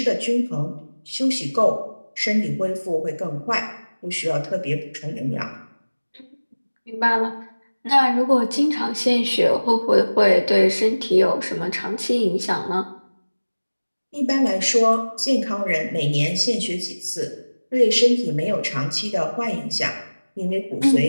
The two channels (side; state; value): both; inverted; correlation -1.00